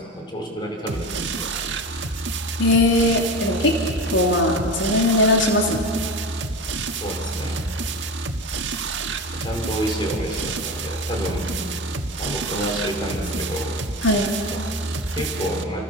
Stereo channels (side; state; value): both; normal; correlation 0.26